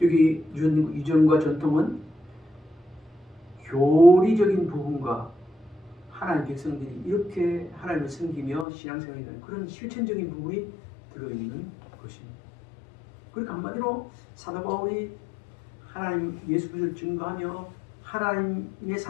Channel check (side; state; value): right; drops out; at 8.7 s